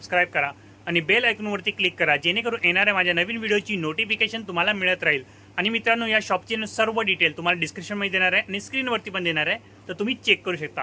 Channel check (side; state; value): both; identical; correlation 1.00